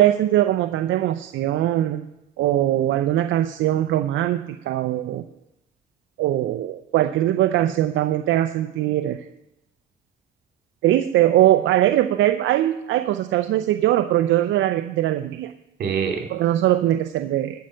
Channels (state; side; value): quieter; left; 12.8 dB